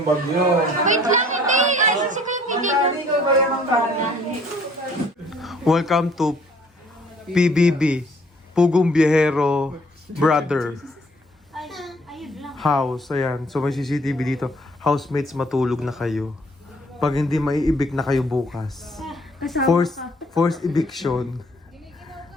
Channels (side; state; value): both; normal; correlation 0.60